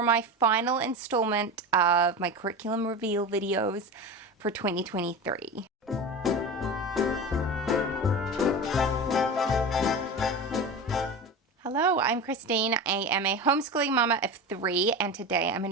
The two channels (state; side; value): normal; both; correlation 0.27